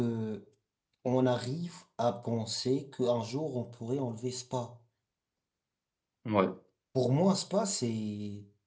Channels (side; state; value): both; identical; correlation 1.00